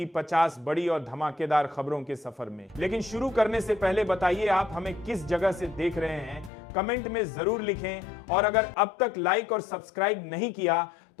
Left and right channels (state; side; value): drops out; right; at 6.5 s